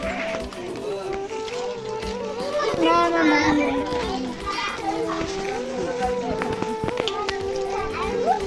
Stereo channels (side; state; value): both; identical; correlation 1.00